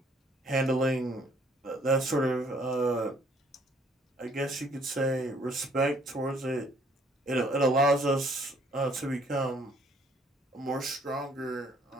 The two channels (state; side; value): normal; both; correlation 0.62